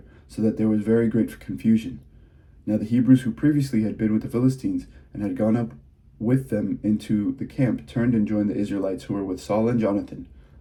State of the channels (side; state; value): both; identical; correlation 1.00